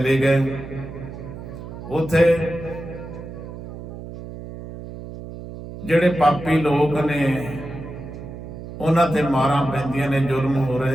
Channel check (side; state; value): right; noise; hum, 11 dB below the sound